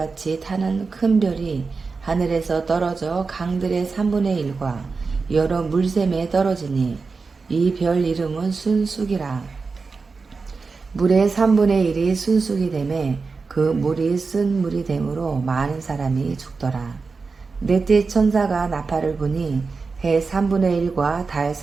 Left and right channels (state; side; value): quieter; left; 4.5 dB